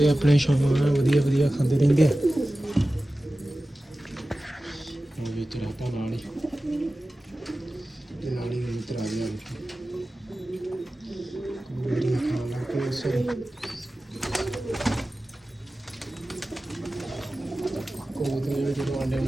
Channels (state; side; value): normal; both; correlation 0.95